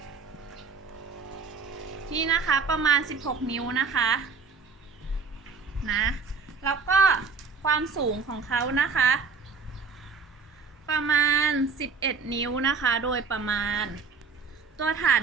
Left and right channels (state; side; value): quieter; left; 5.1 dB